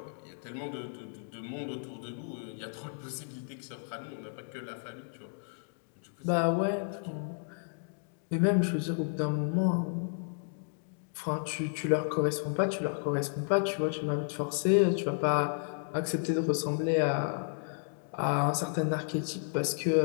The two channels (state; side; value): silent; right; digital silence